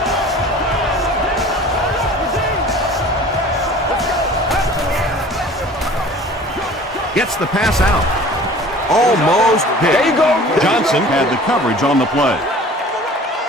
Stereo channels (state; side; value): normal; both; correlation 0.45